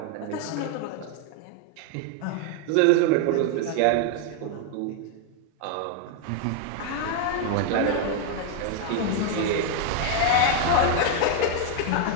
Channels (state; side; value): different; both; correlation 0.01